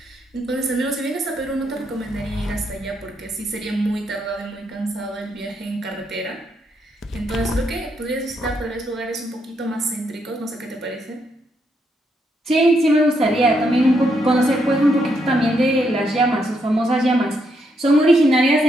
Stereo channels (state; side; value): normal; both; correlation 0.77